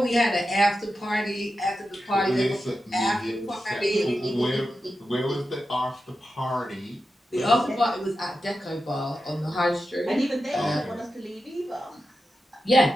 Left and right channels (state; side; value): normal; both; correlation 0.90